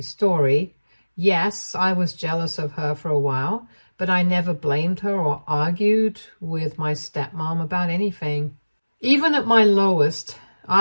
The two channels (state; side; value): inverted; both; correlation -1.00